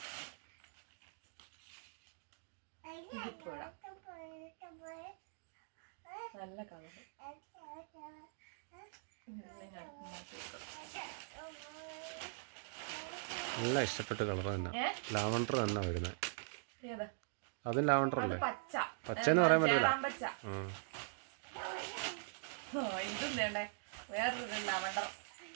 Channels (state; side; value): silent; left; digital silence